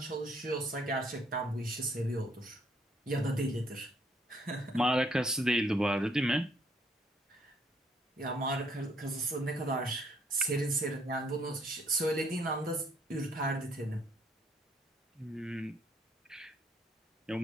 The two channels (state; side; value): normal; both; correlation 0.67